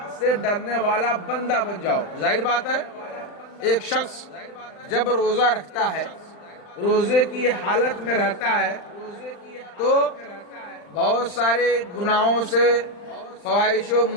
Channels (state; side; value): late; right; 40 ms